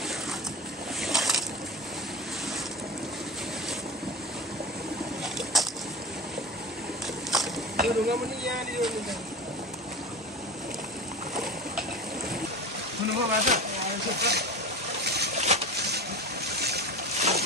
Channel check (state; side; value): normal; both; correlation 0.30